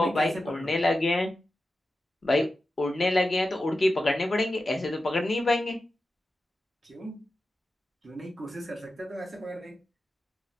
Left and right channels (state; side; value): normal; both; correlation 0.92